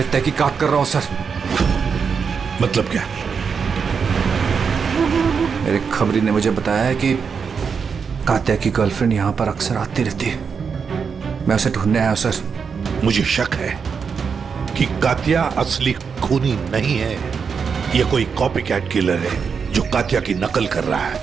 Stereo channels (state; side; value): quieter; left; 6.1 dB